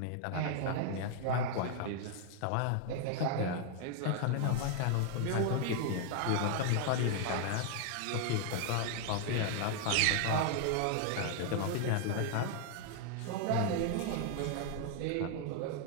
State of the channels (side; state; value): both; different; correlation 0.00